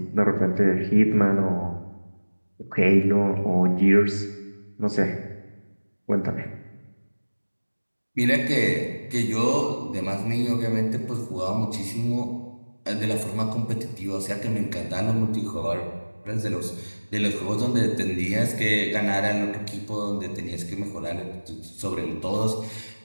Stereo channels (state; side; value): inverted; both; correlation -1.00